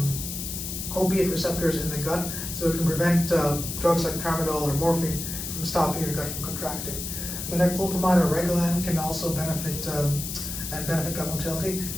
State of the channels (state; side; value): noise; left; hiss, 6 dB below the sound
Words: opiate receptors in the gut, so it can prevent drugs like tramadol or morphine from stopping your gut from contracting. Metoclopramide or Reglan can also benefit gut motility.